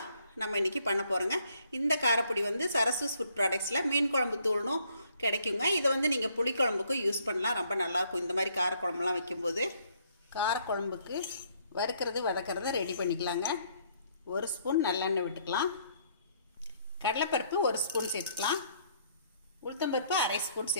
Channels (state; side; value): inverted; both; correlation -0.67